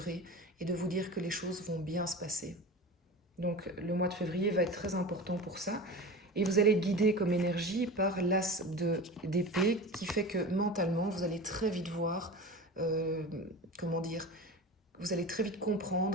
et de vous dire que les choses vont bien se passer. Donc le mois de février va être très important pour ça. Et vous allez être guidé comme énergie par l'as d'épée qui fait que mentalement, vous allez très vite voir, comment dire, vous allez très vite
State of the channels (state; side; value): normal; both; correlation 0.31